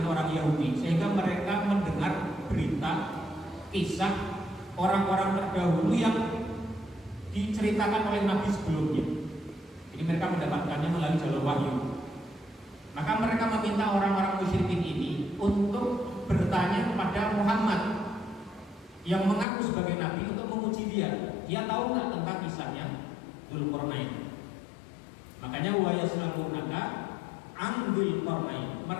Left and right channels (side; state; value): right; drops out; at 19.5 s